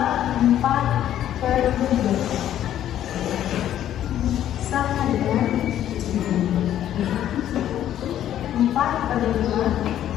4 per 3 sama dengan 4 per 5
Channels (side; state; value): right; quieter; 11.4 dB